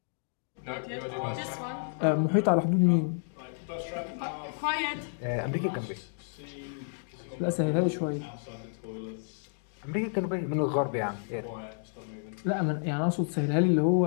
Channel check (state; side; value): silent; right; digital silence